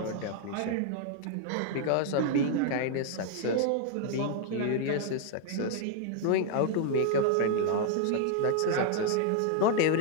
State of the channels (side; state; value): both; different; correlation 0.00